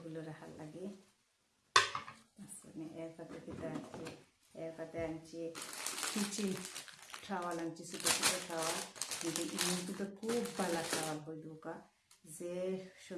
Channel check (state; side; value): identical; both; correlation 1.00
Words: রাখার লাগে। এরপরে আনছি কিচেন টাওয়াল আনছি, ছোটো ছোটো টাওয়াল। কিন্তু ইমুকে তো খুব ভালো টাওয়াল হয়ে ঢোকা, যে